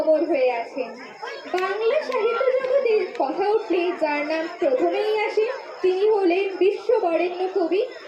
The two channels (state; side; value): identical; both; correlation 1.00